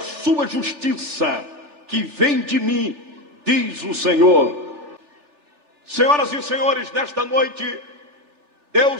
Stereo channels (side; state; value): left; late; 3.4 ms